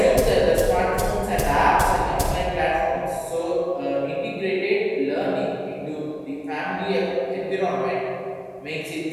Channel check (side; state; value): both; identical; correlation 1.00